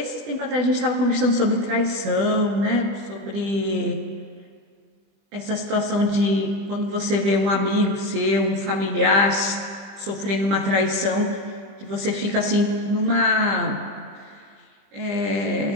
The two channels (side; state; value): left; late; 20 ms